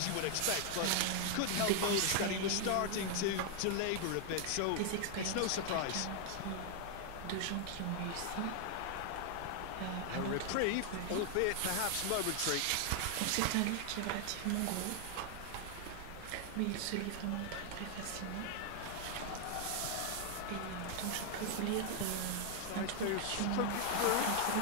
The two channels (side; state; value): both; different; correlation 0.00